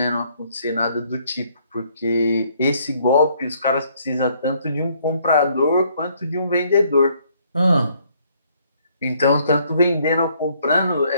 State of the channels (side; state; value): both; inverted; correlation -0.66